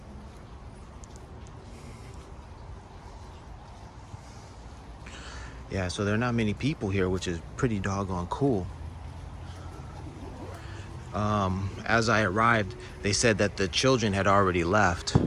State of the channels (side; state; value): both; identical; correlation 1.00